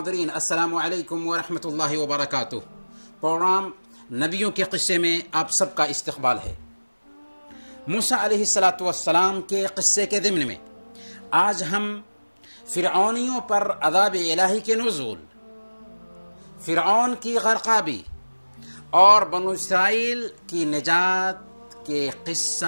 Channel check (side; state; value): both; inverted; correlation -1.00